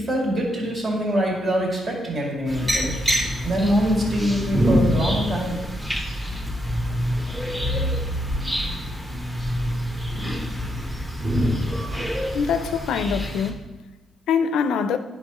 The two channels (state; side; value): normal; both; correlation 0.79